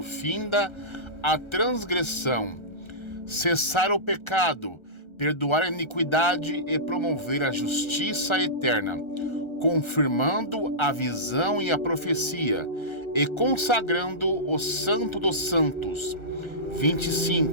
finda a transgressão, cessar o pecado, perdoar a iniquidade e promover a justiça eterna, confirmando a visão e a profecia, e consagrando o santo dos santos.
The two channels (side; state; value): right; late; 1.3 ms